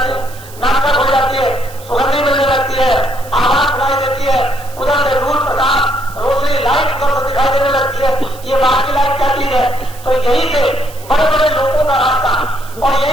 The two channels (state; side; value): noise; right; hiss, 20 dB below the sound